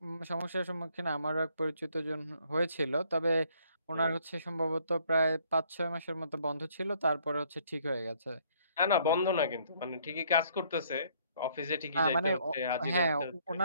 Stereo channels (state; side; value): inverted; both; correlation -0.64